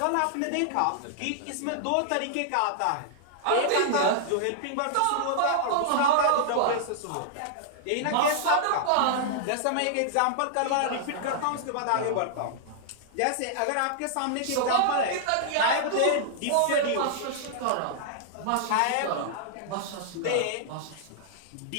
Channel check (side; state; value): both; different; correlation -0.01